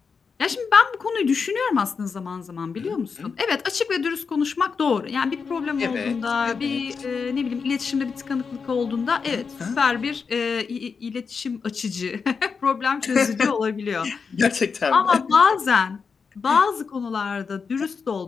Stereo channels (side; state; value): right; quieter; 5.5 dB